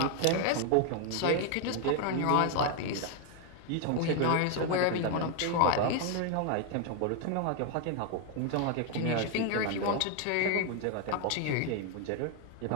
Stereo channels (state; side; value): different; both; correlation 0.01